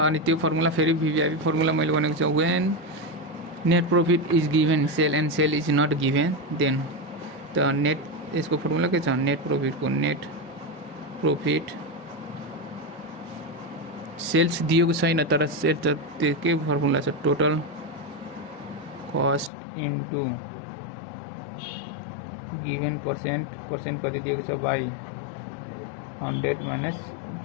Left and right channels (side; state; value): right; drops out; at 19.5 s